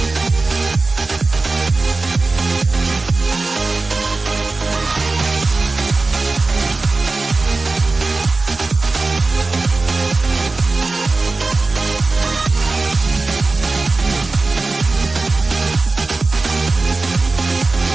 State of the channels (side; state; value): left; quieter; 3.6 dB